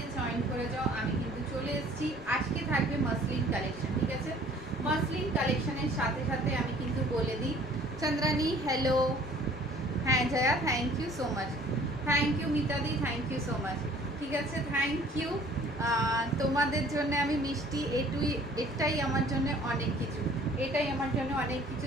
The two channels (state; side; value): normal; both; correlation 0.54